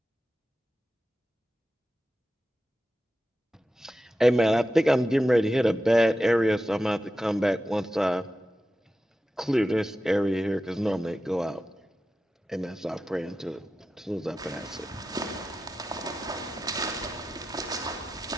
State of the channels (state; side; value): normal; both; correlation 0.92